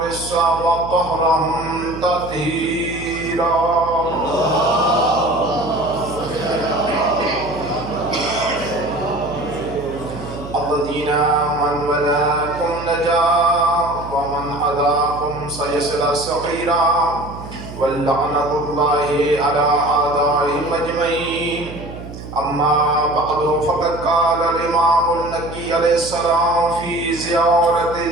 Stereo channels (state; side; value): noise; right; hum, 12 dB below the sound